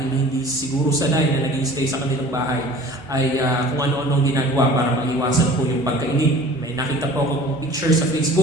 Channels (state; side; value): normal; both; correlation 0.45